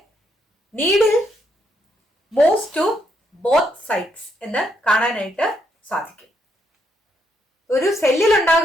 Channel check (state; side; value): normal; both; correlation 0.76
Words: needle moves to both sides എന്ന് കാണാനായിട്ട് സാധിക്കും. ഒരു സെല്ലിൽ